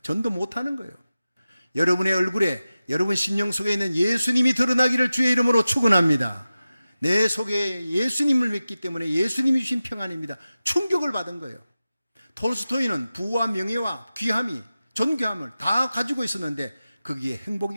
못 하는 거예요. 여러분의 얼굴에 여러분 심령 속에 있는 예수님이 드러나기를 주의 이름으로 축원합니다. 내 속에 예수님을 믿기 때문에 예수님이 주신 평안입니다. 충격을 받은 거예요. 톨스토이는 부와 명예와 귀함이, 존귀함을 다 가지고 있었는데 거기에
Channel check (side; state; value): both; inverted; correlation -0.94